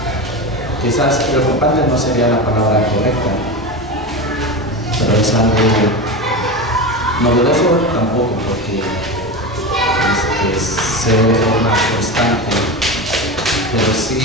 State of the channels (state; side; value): normal; both; correlation 0.22